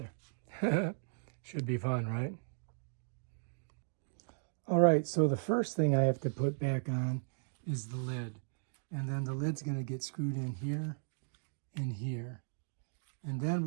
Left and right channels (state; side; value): silent; left; digital silence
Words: Should be fun, right? All right, so the first thing I have to put back on is the lid. And then the lid's gonna get screwed in here and here. And then